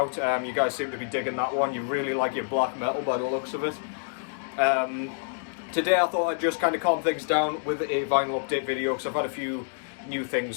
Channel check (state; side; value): silent; right; digital silence